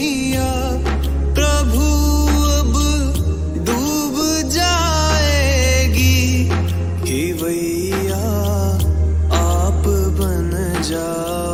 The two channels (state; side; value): identical; both; correlation 1.00